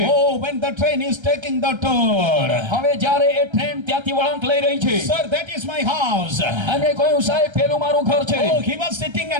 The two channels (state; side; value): late; left; 1.3 ms